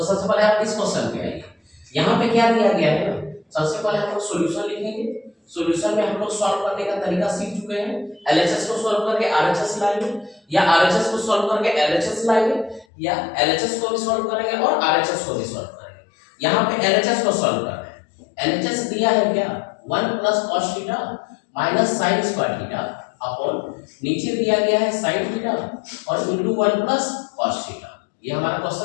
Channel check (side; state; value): right; drops out; at 12.9 s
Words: सबसे पहले आप इस क्वेश्चन पे आइए। यहाँ पे क्या दिया गया है ना, सबसे पहले हम लोग सॉल्यूशन लिखेंगे। सॉल्यूशन में हम लोग सॉल्व करने का तरीका सीख चुके हैं। एलएचएस को सॉल्व करके आरएचएस लाएंगे, या आरएचएस को सॉल्व करके एलएचएस लाएंगे, या एलएचएस को भी सॉल्व करेंगे और आरएचएस को भी सॉल्व करेंगे। यहाँ पे एलएचएस को सॉल्व कर रहे हैं। एलएचएस दिया है क्या? 1 plus cos theta minus sin square theta upon नीचे दिया गया है sin थीटा और इनटू 1 प्लस cos थीटा। ये हमारा